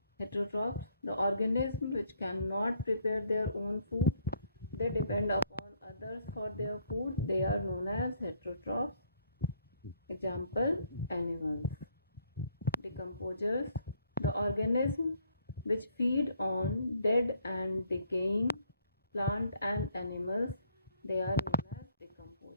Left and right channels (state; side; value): inverted; both; correlation -0.67